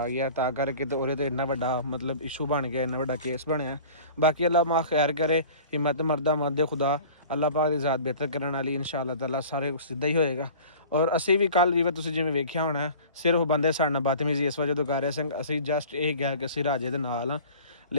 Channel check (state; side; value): inverted; both; correlation -0.43